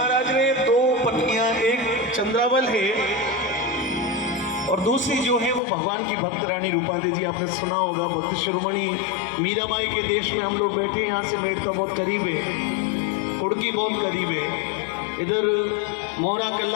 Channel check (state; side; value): drops out; right; at 5.6 s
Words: ने दो पत्नियां, एक चंद्रावल है और दूसरी जो है वो भगवान की भक्त रानी रूपादेवी जी। आपने सुना होगा, भक्त शिरोमणि मीराबाई के देश में हम लोग बैठे, यहाँ से मेड़ता बहुत करीब है, कुड़की बहुत करीब है, इधर मोहरा